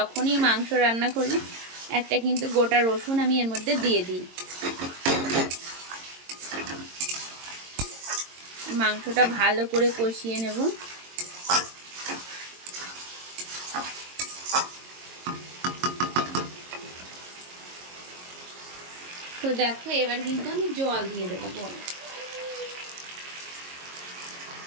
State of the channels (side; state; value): left; late; 22 ms